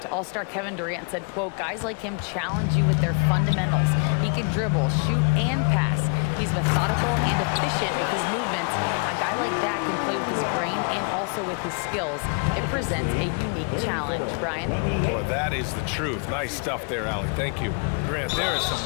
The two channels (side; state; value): right; quieter; 39.5 dB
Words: All-star Kevin Durant said, quote, guys like him challenge you with their fundamentals. He can dribble, shoot, and pass. He's methodical and efficient with his movements. A guy like that can play with his brain and also with his skills. It presents a unique challenge. Brian? Boy, that is the truth. Nice stuff there, Allie. Thank you. Grant, there is some